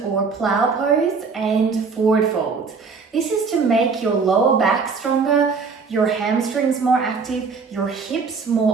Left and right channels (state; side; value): quieter; left; 5.0 dB